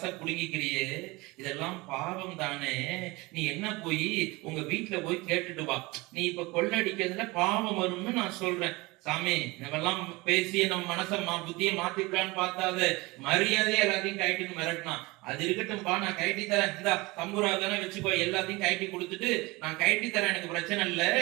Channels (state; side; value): quieter; left; 23.1 dB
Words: புடுங்கிக்கிறியே, இதெல்லாம் பாவம் தானே. நீ என்ன போய் உங்க வீட்டுல போய் கேட்டுட்டு வா, நீ இப்ப கொள்ளடிக்கிறதுல பாவம் வரும்னு நான் சொல்றேன். சாமி, இதெல்லாம் பேசி நம்ம மனசை புத்தியை மாத்திக்கலான்னு பார்த்தாது, மரியாதையே எல்லாத்தையும் கைட்டின்னு மிரட்டினான். அது இருக்கட்டும்பா, நான் கைட்டி தரேன், இந்த தம்பூரா தானே வச்சுக்கோ, எல்லாத்தையும் கைட்டி கொடுத்துட்டு நான் கைட்டி தரேன், எனக்கு பிரச்சனை இல்லை.